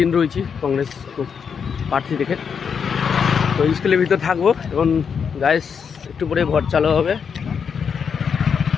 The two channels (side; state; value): right; quieter; 6.6 dB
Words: রয়েছি কংগ্রেস প্রার্থী থেকে। তো স্কুলের ভিতর থাকবো এবং গাইস একটু পরে ভোট চালু হবে,